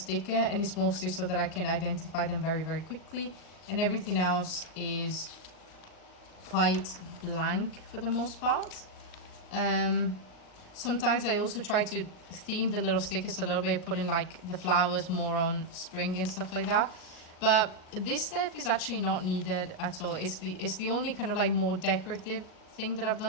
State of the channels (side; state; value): right; late; 38 ms